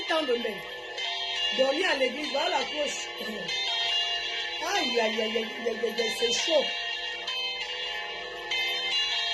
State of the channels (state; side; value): identical; both; correlation 1.00